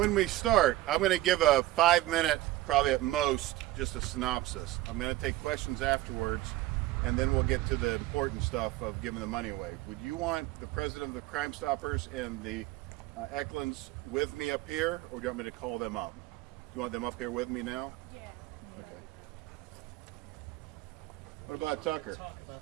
we start, I'm going to give a 5-minute, probably at most, just a synopsis. I'm going to take questions afterwards, and then we'll get to the important stuff of giving the money away. Would you want the president of the Crime Stoppers and the Eklunds with me up here, or do you want me to call them up? You want them up here with me now? Yeah. Okay. What about Tucker? Talk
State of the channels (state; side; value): quieter; left; 16.4 dB